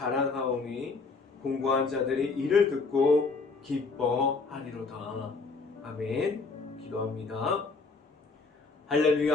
공고한 자들이 이를 듣고 기뻐하리로다. 아멘. 기도합니다.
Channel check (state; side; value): quieter; right; 4.2 dB